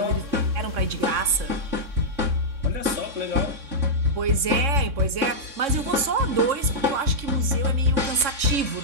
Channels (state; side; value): late; left; 3.6 ms